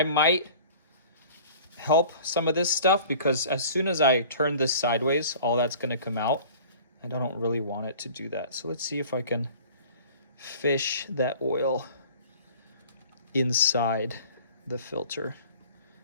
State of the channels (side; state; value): both; inverted; correlation -0.45